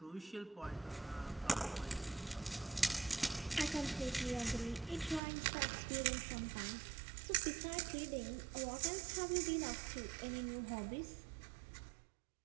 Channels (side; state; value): left; drops out; at 5.2 s